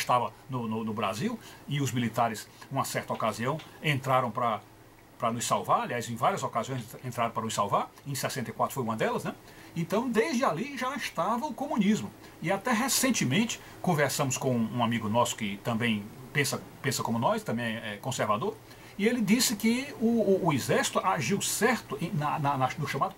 no Brasil, e os militares, numa certa ocasião, entraram para nos salvar, aliás, em várias ocasiões entraram para nos salvar, em 64 foi uma delas, né? Então, desde ali já estava o comunismo. E até recentemente, conversamos com um amigo nosso que também pensa como nós, também é conservador, e ele disse que o exército agiu certo no chamado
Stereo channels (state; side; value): identical; both; correlation 1.00